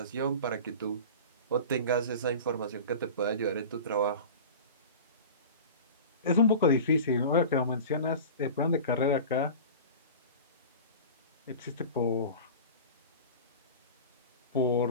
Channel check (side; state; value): both; inverted; correlation -0.34